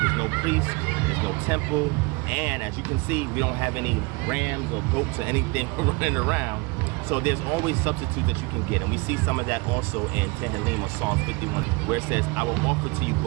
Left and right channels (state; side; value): quieter; left; 24.9 dB